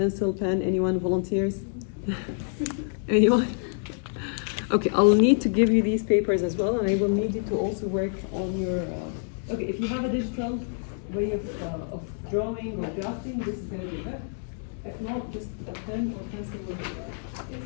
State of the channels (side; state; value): right; silent; digital silence